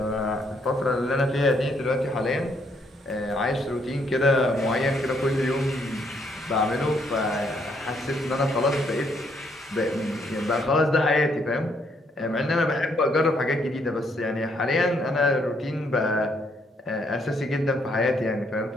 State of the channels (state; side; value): normal; both; correlation 0.71